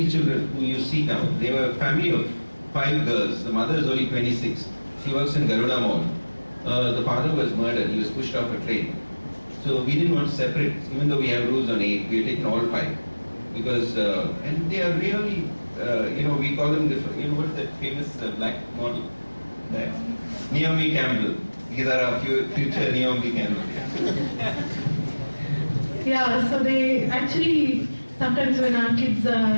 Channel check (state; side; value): inverted; both; correlation -1.00